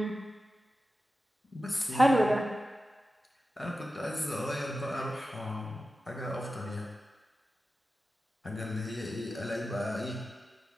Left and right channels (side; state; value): both; normal; correlation 0.93